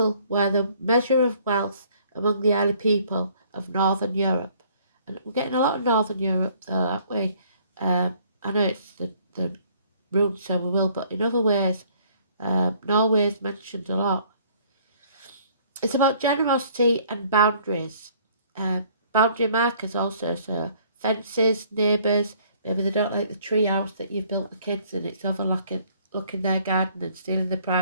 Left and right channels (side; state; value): both; inverted; correlation -0.59